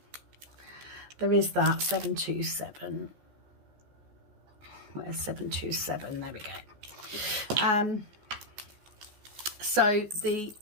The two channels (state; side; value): late; left; 14 ms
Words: There is that 727. Where's 727? There we go. So the,